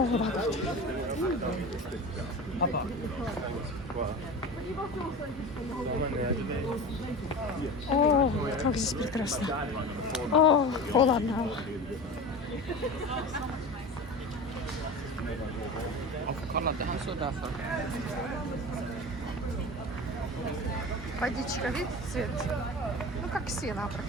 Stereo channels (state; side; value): normal; both; correlation 0.32